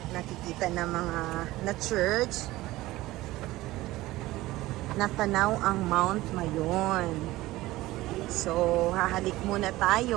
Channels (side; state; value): left; quieter; 17.7 dB